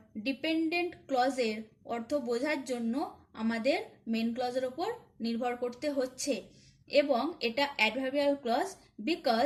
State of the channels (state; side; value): identical; both; correlation 1.00